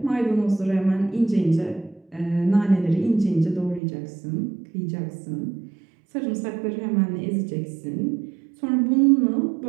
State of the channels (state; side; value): drops out; left; at 3.8 s